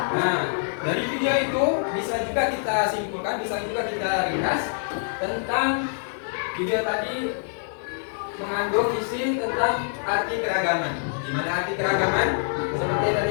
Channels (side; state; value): right; silent; 61 dB below the other